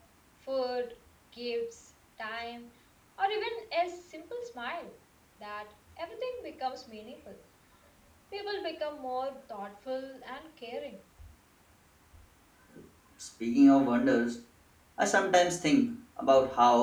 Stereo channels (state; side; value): identical; both; correlation 1.00